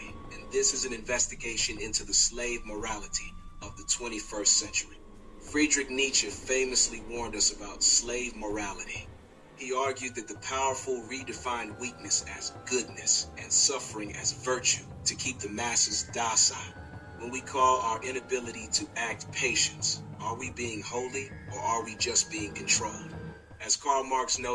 and this is an investigation into the slave morality of the 21st century. Friedrich Nietzsche famously warned us about slave morality. He argued that the powerful redefined weakness as goodness and suffering as virtue to keep the masses docile. When we call our inability to act patience, are we being holy or are we just being controlled? As Karl Marx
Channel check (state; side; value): identical; both; correlation 1.00